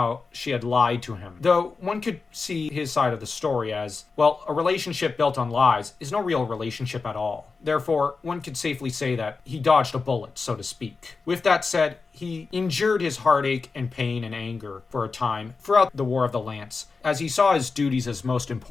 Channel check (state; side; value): quieter; right; 4.4 dB